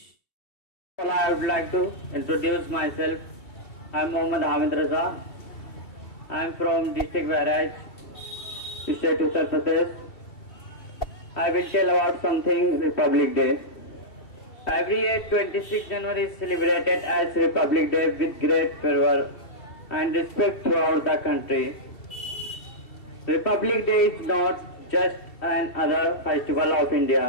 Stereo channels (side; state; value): right; late; 2.7 ms